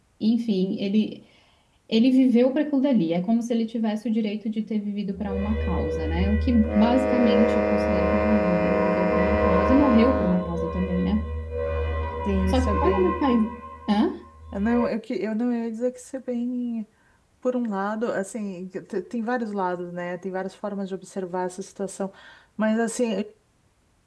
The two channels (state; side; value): identical; both; correlation 1.00